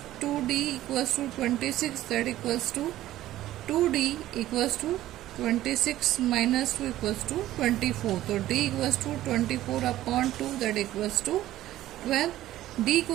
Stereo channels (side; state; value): left; quieter; 14.3 dB